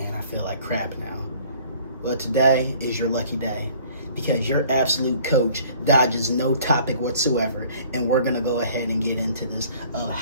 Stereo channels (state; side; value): inverted; both; correlation -0.54